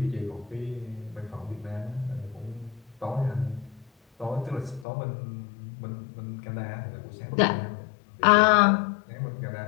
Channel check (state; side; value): drops out; right; at 4.9 s